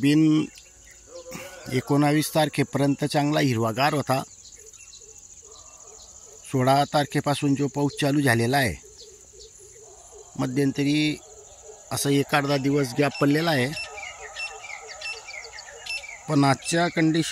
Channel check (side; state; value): both; identical; correlation 1.00